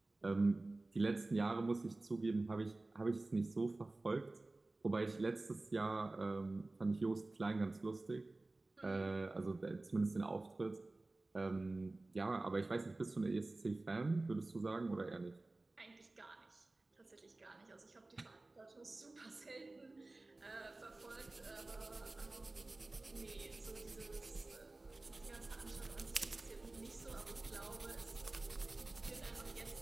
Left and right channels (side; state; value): left; quieter; 3.0 dB